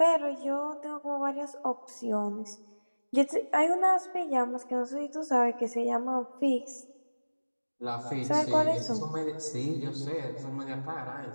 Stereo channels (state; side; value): inverted; both; correlation -1.00